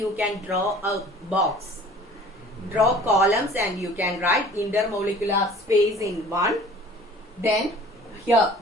can draw a box, draw columns, and you can write intermolecular space in 1. Then here,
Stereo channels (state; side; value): normal; both; correlation 0.47